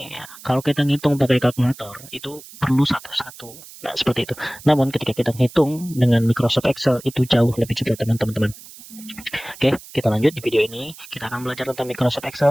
ya. Kalau kita ngitung pakai kalkulator itu perlu satu-satu, nah seperti itu. Namun ketika kita ngitung dengan Microsoft Excel itu jauh lebih cepat teman-teman. Oke, kita lanjut di video ini. Kita akan belajar tentang Microsoft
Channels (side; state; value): right; noise; hiss, 18 dB below the sound